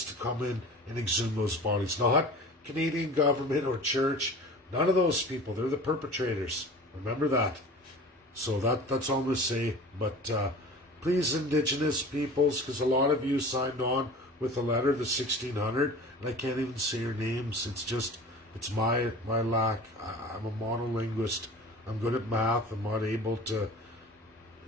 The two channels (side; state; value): both; normal; correlation 0.39